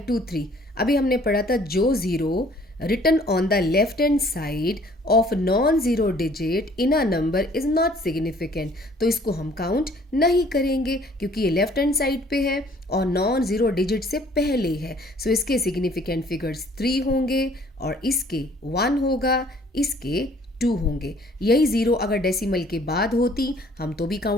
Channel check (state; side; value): normal; both; correlation 0.57